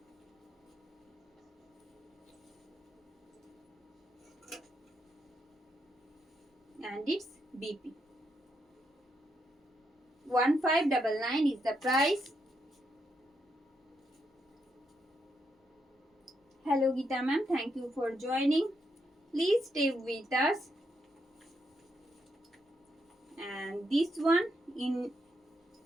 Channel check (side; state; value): both; normal; correlation 0.80